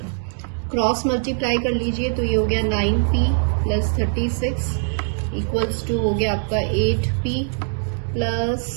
क्रॉस मल्टीप्लाई कर लीजिए तो ये हो गया 9P प्लस 36 इक्वल्स टू हो गया आपका 8P प्लस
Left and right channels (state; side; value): silent; left; digital silence